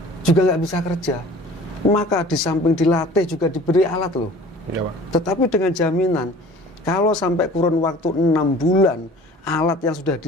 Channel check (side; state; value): both; normal; correlation 0.46